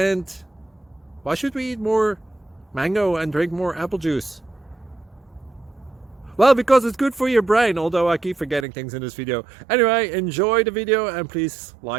why should we eat more mango and drink more apple juice? Well, because it's good for your brain, although I keep forgetting things in this video. Anyway, enjoy the video and please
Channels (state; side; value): drops out; left; at 8.7 s